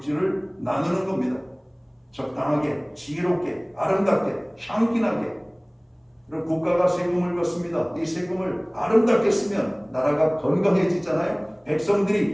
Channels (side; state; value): both; identical; correlation 1.00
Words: 나누는 겁니다. 적당하게, 지혜롭게, 아름답게, 향기나게. 그럼 국가가 세금을 걷습니다. 이 세금을 아름답게 쓰면 나라가 건강해지잖아요.